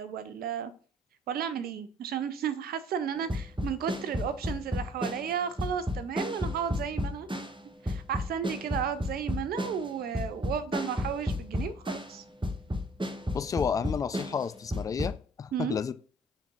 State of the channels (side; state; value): both; normal; correlation 0.54